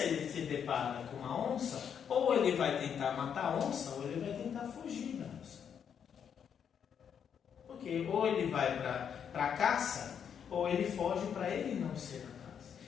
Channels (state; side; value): quieter; right; 7.9 dB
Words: se depara com uma onça, ou ele vai tentar matar a onça, ou ele vai tentar fugir da onça. Porque ou ele vai para a caça, ou ele foge para ele não ser a caça.